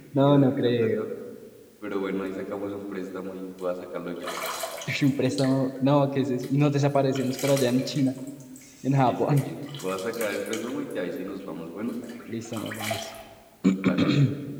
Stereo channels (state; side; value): identical; both; correlation 1.00